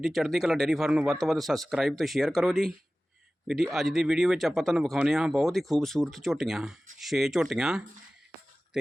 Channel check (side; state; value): both; normal; correlation 0.97